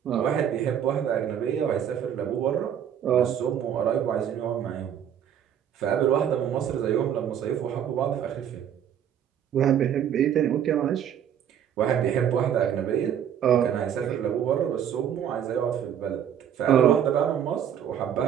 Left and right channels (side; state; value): left; quieter; 9.3 dB